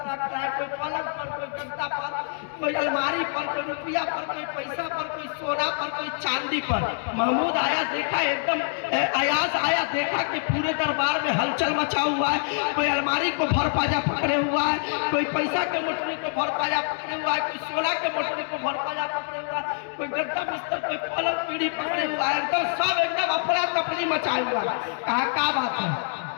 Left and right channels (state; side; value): silent; right; digital silence